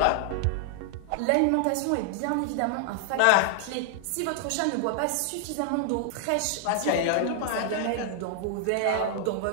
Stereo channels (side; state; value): both; different; correlation 0.00